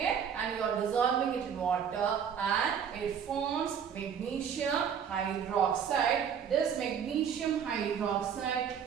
and you are dissolving it in water and it forms magnesium hydroxide. This magnesium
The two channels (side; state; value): left; quieter; 7.7 dB